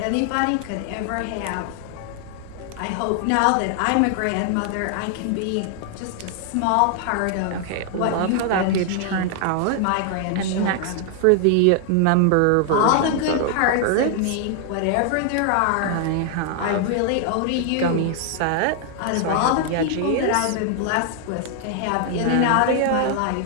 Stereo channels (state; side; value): different; both; correlation 0.00